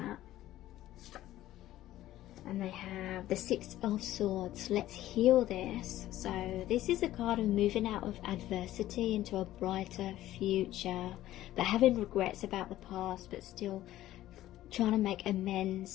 And they have the Six of Swords. Let's heal this. So this is a card of moving out of adversity into a brighter future, but having regrets about the past, but still trying to make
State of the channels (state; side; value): quieter; right; 14.3 dB